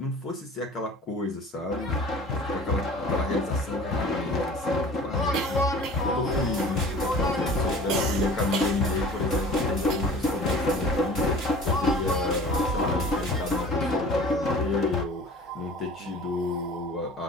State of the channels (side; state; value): both; normal; correlation 0.44